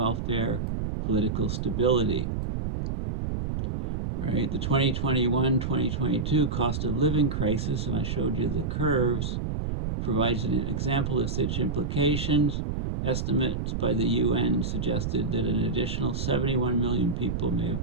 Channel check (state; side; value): noise; right; rumble, 2 dB below the sound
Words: political stability. Right, the 2021-2022 cost of living crisis, and I showed you the curves, provides an example of such implications. Estimates by the UN suggested that an additional 71 million people may have